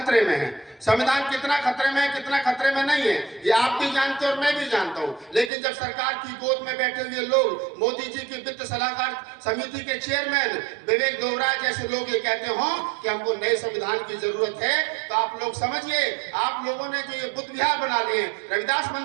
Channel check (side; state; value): left; drops out; at 5.5 s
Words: में है। संविधान कितना खतरे में है, कितना खतरे में नहीं है, ये आप भी जानते हैं और मैं भी जानता हूं। लेकिन जब सरकार की गोद में बैठे हुए लोग, मोदी जी की वित्त सलाहकार समिति के चेयरमैन विवेक दोबराय जैसे लोग ये कहते हो कि हमको नए संविधान की जरूरत है, तो आप लोग समझिए, आप लोगों ने जो ये बुद्ध विहार बना लिए, रविदास